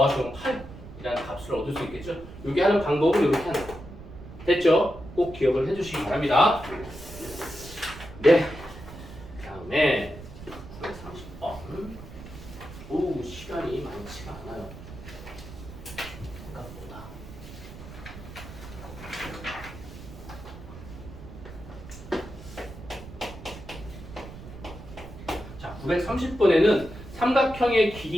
8이라는 값을 얻을 수 있겠죠? 요게 하는 방법은 이렇게 하는 거예요. 됐죠? 꼭 기억을 해주시기 바랍니다. 네. 다음에 930번. 오, 시간이 많지가 않아요. 생각보다. 자, 930번에는 삼각형의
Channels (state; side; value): noise; right; rumble, 14 dB below the sound